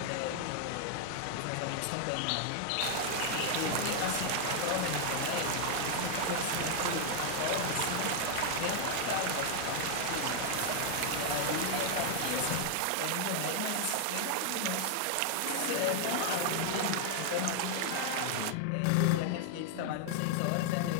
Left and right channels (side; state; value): both; different; correlation 0.00